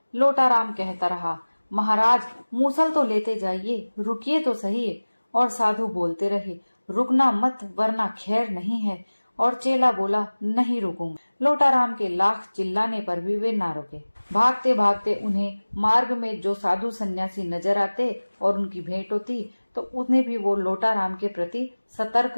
लोटाराम कहता रहा, महाराज मूसल तो लेते जाइए, रुकिए तो सही। और साधु बोलते रहे, रुकना मत वरना खैर नहीं है। और चेला बोला, नहीं रुकूंगा। लोटाराम के लाख चिल्लाने पर भी वे ना रुके। भागते भागते उन्हें मार्ग में जो साधु सन्यासी नजर आते और उनकी भेंट होती तो उन्हें भी वो लोटाराम के प्रति सतर्क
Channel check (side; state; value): both; inverted; correlation -1.00